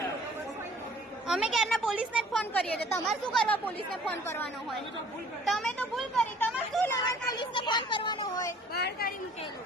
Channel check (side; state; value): both; normal; correlation 0.54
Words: અમે ક્યારના પોલીસને જ ફોન કરીએ છીએ. તમારે શું કરવા પોલીસને ફોન કરવાનો હોય? તમે તો ભૂલ કરી. તમારે શું લેવા પોલીસને ફોન કરવાનો હોય? બહાર કાઢી મૂકેલું